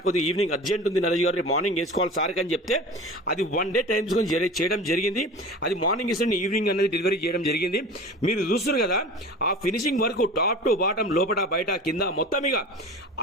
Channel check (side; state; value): both; normal; correlation 0.37